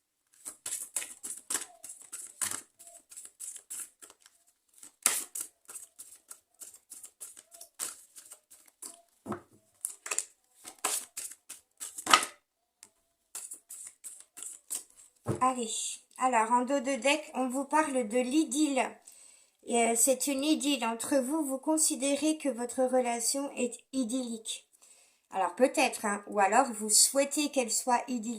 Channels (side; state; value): both; identical; correlation 1.00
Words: Allez, alors en dos de deck, on vous parle de l'idylle. C'est une idylle entre vous, vous considérez que votre relation est idyllique. Alors peut-être, hein, ou alors vous souhaitez qu'elle soit